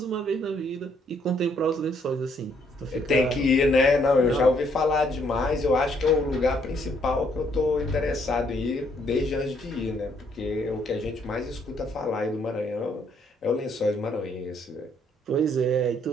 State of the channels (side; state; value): both; normal; correlation 0.68